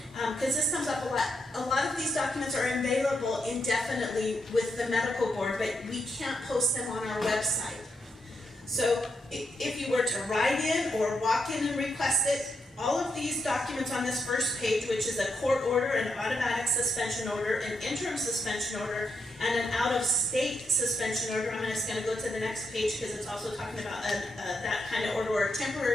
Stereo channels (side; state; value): both; normal; correlation 0.81